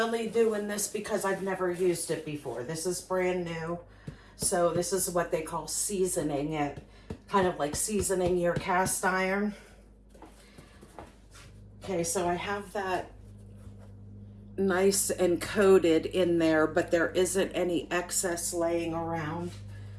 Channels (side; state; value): both; identical; correlation 1.00